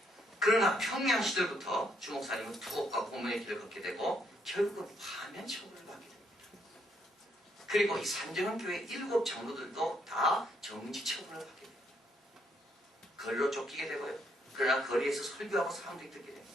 그러나 평양 시절부터 주 목사님은 투옥과 고문의 길을 걷게 되고 결국은 파면 처벌을 받게 됩니다. 그리고 이 산정은교회 7 장로들도 다 정지 처분을 받게 됩니다. 거리로 쫓기게 되고요. 그러나 거리에서 설교하고 사람들이 듣게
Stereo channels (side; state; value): both; normal; correlation 0.72